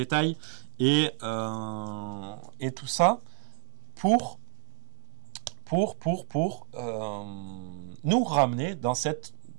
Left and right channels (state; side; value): silent; left; 59 dB below the other